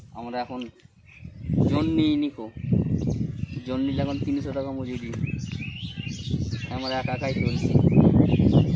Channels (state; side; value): identical; both; correlation 1.00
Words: আমরা এখন জন্যি নিকো, জন্যিটা এখন 300 টাকা মজুরি। আমরা একাই চলছি।